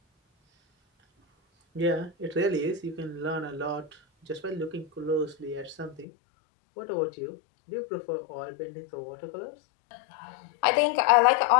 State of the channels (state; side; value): drops out; right; at 6.1 s